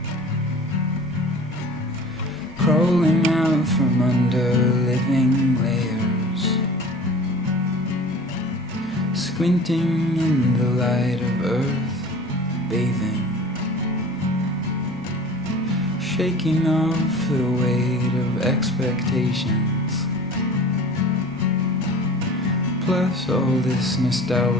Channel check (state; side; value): normal; both; correlation 0.42